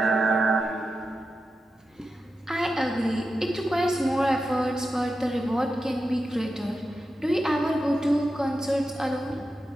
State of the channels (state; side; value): normal; both; correlation 0.90